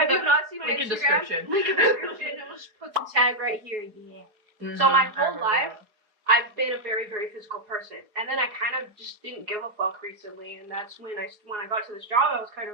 you not seen my Link in Instagram? description. Link in description. And we'll just put the tag right here. Yeah. So my whole life, I've been a very, very physical person. And then I kind of just didn't give a fuck recently, and that's when I got to this job, I was kind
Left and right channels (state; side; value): late; left; 4.7 ms